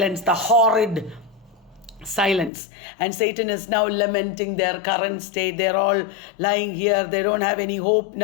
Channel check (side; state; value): right; drops out; at 2.5 s